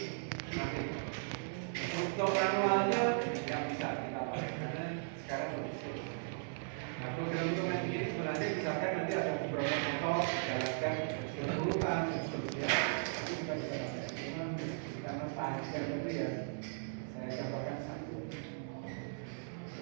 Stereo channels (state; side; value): silent; left; digital silence